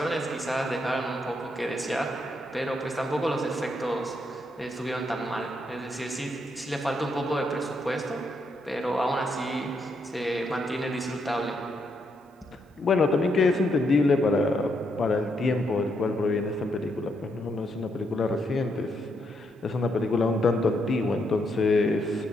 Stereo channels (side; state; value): both; normal; correlation 0.77